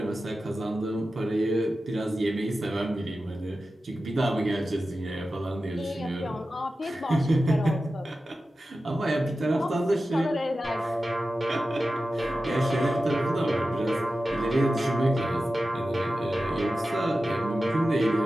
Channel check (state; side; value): normal; both; correlation 0.93